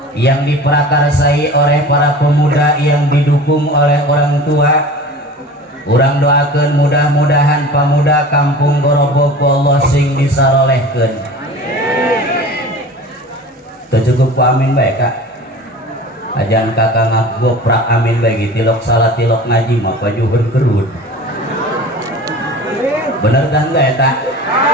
yang diprakarsai oleh para pemuda yang didukung oleh orang tua, urang doakeun mudah-mudahan pemuda kampung Gorobok Allah sing disarolehkeun. Cukup amin baik Kak. Ajan kakak ngagoprak amin bagi tilok salat tilok ngaji mah pajuhun kerut. Bener kan gak eta?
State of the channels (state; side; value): normal; both; correlation 0.38